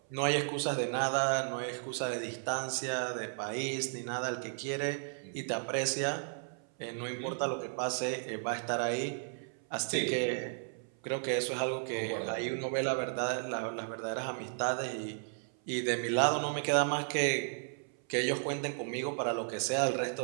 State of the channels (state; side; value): silent; left; 55 dB below the other